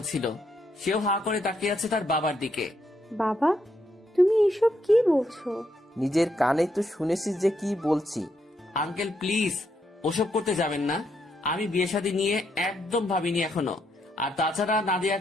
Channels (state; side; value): normal; both; correlation 0.77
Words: ছিল। সেও হা করে তাকিয়ে আছে তার বাবার দিকে। বাবা, তুমি এসব কি বলছো? নিজের কানে তো শুনেছিস যে কি বলছি। আঙ্কেল প্লিজ, ওসব করতে যাবেন না। আমি বিয়ে শাদী নিয়ে একদম ভাবিনি এখনো। আর তাছাড়া